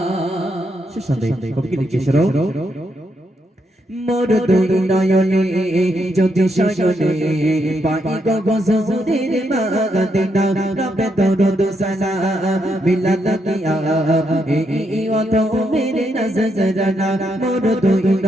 শেষ সন্দেহ কবি লিখেছিল মোর দুই নয়নে যদি শয়নে পাই গো গজরের মাগদিনা রবে দরুদ সালাম মিলাদ কিয়া এই অত মেরে নজরানা মোর দুই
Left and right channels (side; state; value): both; normal; correlation 0.79